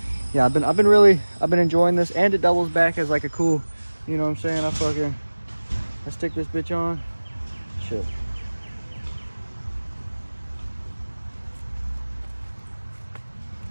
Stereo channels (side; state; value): both; inverted; correlation -1.00